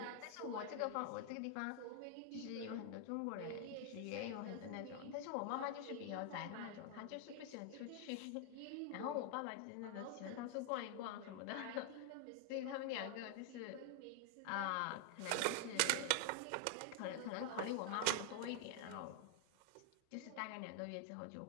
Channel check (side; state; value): both; different; correlation 0.00